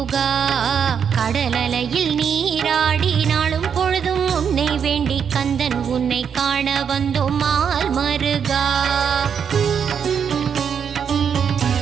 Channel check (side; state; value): left; quieter; 7.4 dB